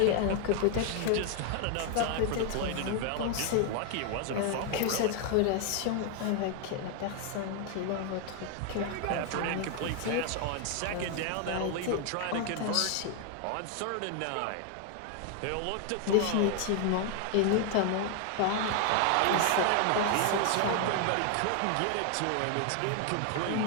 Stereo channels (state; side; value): different; both; correlation 0.01